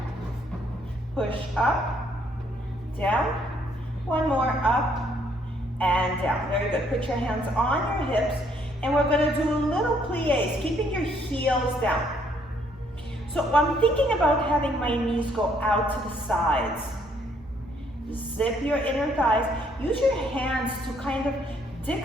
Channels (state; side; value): normal; both; correlation 0.67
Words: Push up, down. One more, up and down. Very good. Put your hands on your hips, and we're going to do little plies, keeping your heels down. So I'm thinking about having my knees go out to the sides. Zip your inner thighs. Use your hands to kind of